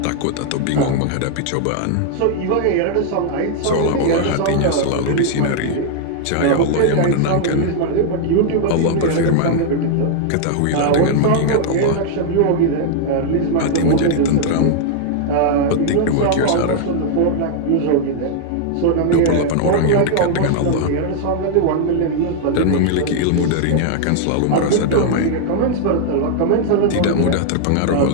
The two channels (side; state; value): both; different; correlation 0.00